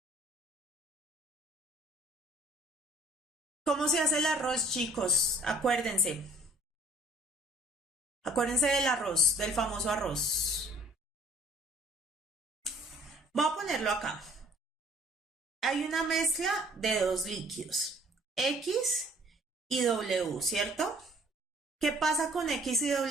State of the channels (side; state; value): both; normal; correlation 0.55